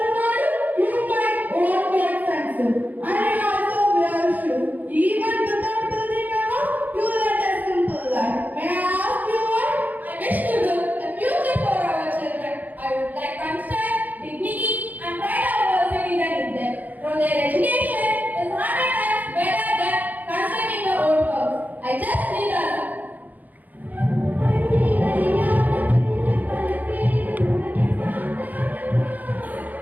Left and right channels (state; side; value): late; left; 0.081 ms